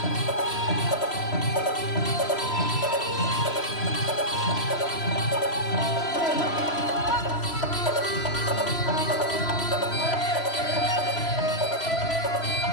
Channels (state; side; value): late; right; 3.0 ms